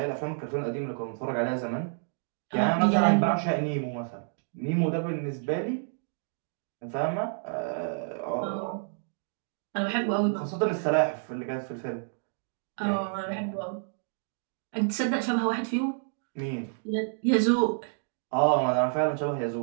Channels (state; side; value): silent; left; digital silence